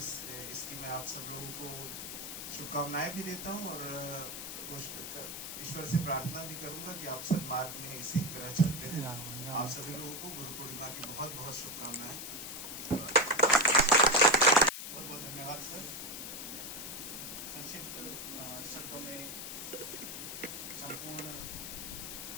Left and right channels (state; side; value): noise; left; hiss, 7 dB below the sound